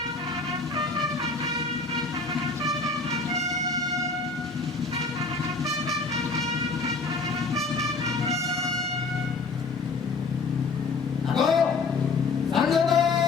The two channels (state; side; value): quieter; right; 3.9 dB